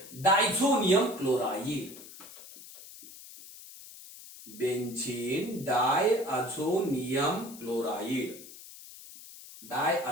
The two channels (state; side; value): noise; left; hiss, 17 dB below the sound